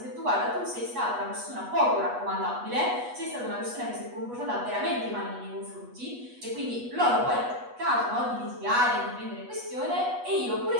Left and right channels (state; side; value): late; left; 8.2 ms